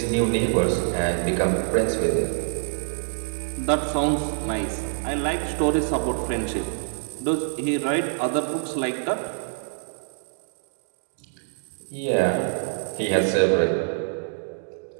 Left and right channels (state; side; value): silent; left; digital silence